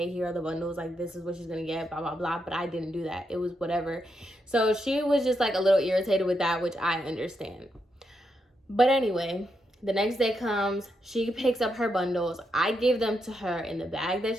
here are the bundles. Like, this is what she's going to get, blah, blah, blah. But I didn't do that. It was whatever. So she was just like a little irritated with that, which I understand. But anyway, the next day comes, she picks up her bundles. I gave them to her in the bag that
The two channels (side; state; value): both; normal; correlation 0.82